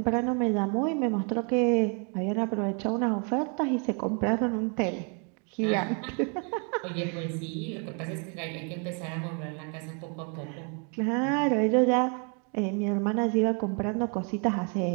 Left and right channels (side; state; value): left; quieter; 37.6 dB